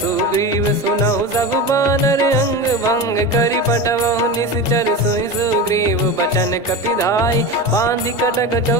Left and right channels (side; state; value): both; normal; correlation 0.25